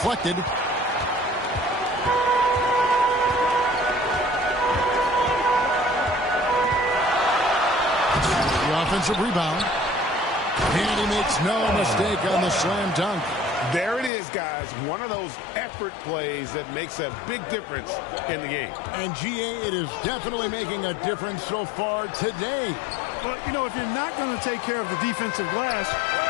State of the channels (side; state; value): right; drops out; at 14.1 s